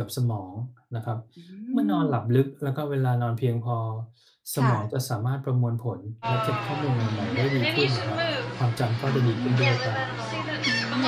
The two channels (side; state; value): both; identical; correlation 1.00